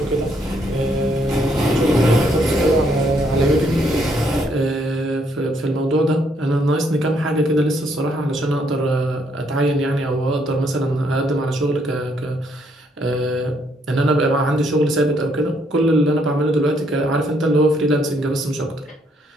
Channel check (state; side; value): normal; both; correlation 0.71